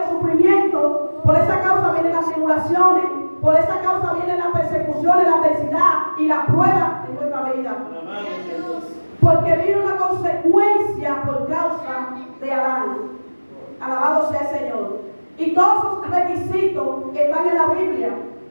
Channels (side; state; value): both; inverted; correlation -1.00